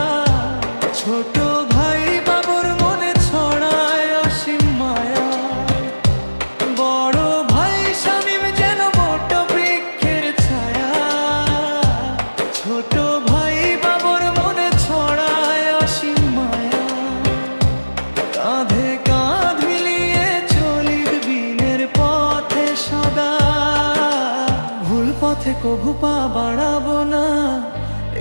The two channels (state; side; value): inverted; both; correlation -1.00